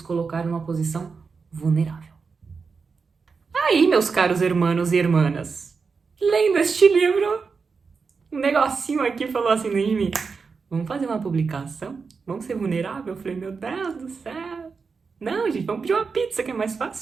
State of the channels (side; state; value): left; quieter; 5.0 dB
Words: colocar numa posição vulnerável. Aí, meus caros irmãos e irmãs, lendo este livro, um negocinho aqui falou assim dentro de mim: vamos fazer uma publicação? Vamos ser vulnerável? Eu falei, meu Deus do céu. Não, gente, vamos pedir uma pizza que é mais